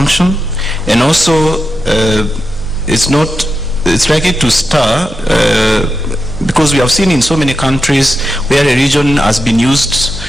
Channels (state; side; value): noise; right; hum, 15 dB below the sound